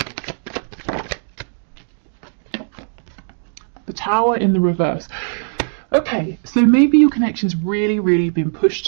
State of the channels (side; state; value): left; silent; digital silence